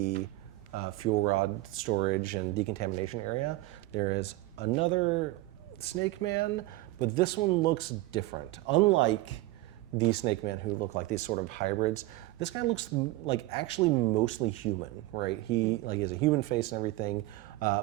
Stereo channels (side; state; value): left; quieter; 18.4 dB